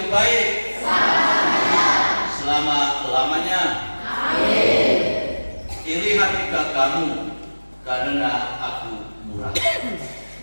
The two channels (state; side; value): inverted; both; correlation -1.00